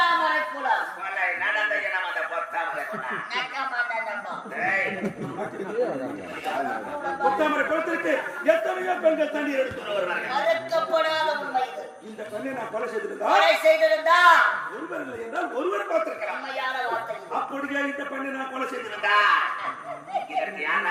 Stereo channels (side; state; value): both; identical; correlation 1.00